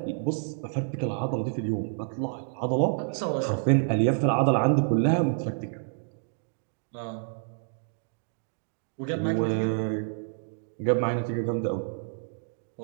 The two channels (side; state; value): left; silent; digital silence